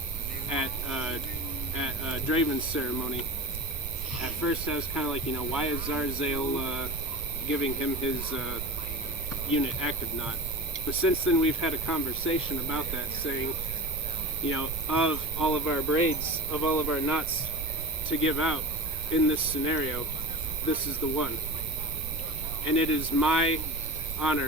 at Draven's ceremony, at first I was kind of like, why is Zarzale giving him his unit active knot? But since then we've had a conversation about that, saying, of all of our braids, of all of our knots to give out in this scenario, this is the one. And it is my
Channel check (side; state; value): right; noise; rumble, 9 dB below the sound